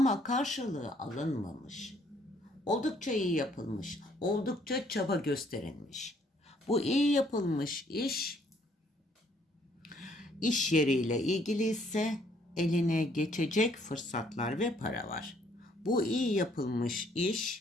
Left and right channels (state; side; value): normal; both; correlation 0.65